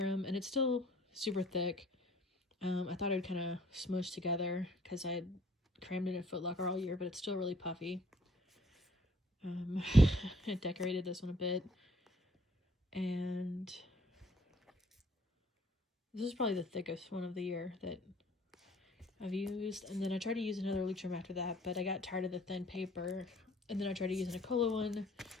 and it's still super thick. I thought I'd kind of smush together because I had crammed it in Foot Locker all year, but it's still really puffy. I decorated this one a bit, and this is probably the thickest one of the year that I've used. And then I tried to use another Luxurum after that, but I got tired of the thin paper. And then I tried to use an Nicola one.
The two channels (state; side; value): normal; both; correlation 0.59